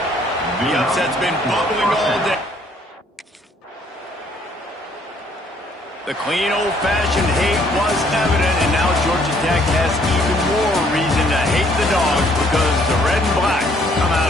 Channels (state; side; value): normal; both; correlation 0.64